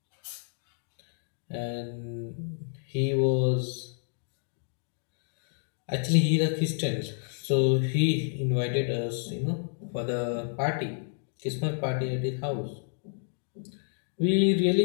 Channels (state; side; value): silent; right; digital silence